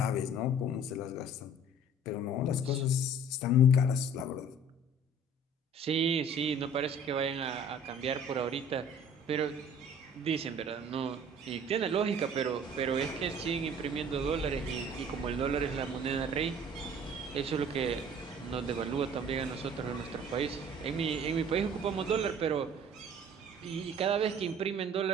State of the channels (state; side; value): normal; both; correlation 0.50